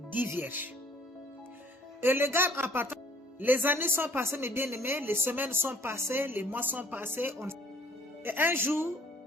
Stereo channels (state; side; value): normal; both; correlation 0.57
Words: 10 vierges. Et le gars, en partant, les années sont passées, mes bien-aimés, les semaines sont passées, les mois sont passés. Et un jour,